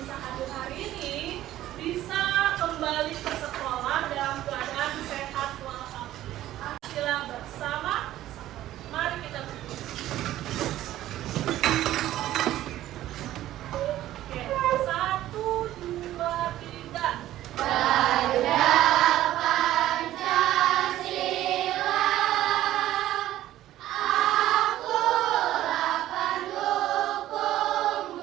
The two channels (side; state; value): left; quieter; 13.9 dB